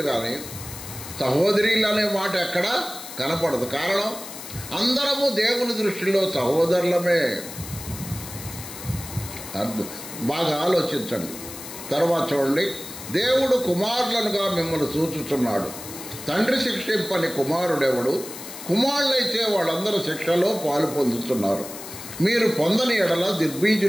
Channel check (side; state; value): left; noise; hiss, 12 dB below the sound